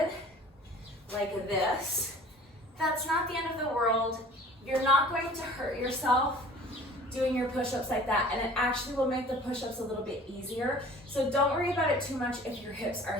like this, that's not the end of the world. You're not going to hurt yourself doing your push-ups like that, and it actually will make the push-ups a little bit easier. So don't worry about it too much if your hips are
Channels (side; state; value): both; normal; correlation 0.47